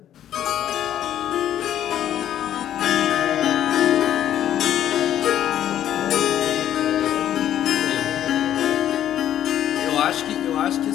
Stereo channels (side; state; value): right; quieter; 11.1 dB